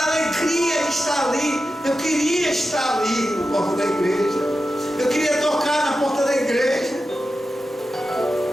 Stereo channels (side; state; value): both; normal; correlation 0.91